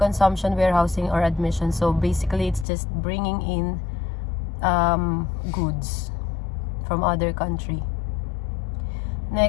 warehousing, or admission. So basically, it's just bringing in goods from other country.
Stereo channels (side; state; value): right; drops out; at 2.7 s